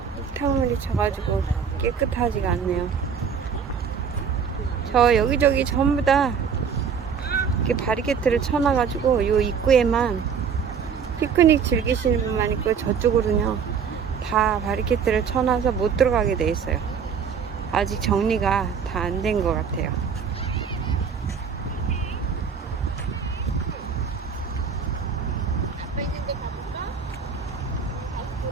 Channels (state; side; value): quieter; left; 6.6 dB